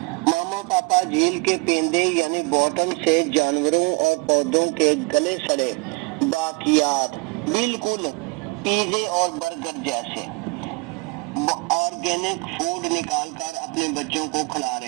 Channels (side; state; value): left; quieter; 27.3 dB